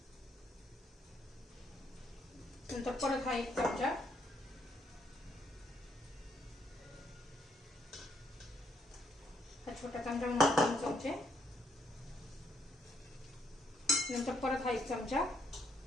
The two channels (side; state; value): both; normal; correlation 0.73